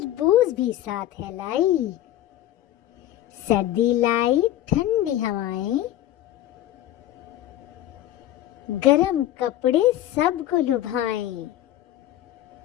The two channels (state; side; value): quieter; right; 13.3 dB